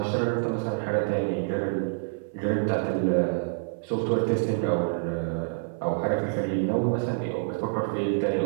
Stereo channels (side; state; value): left; silent; 60 dB below the other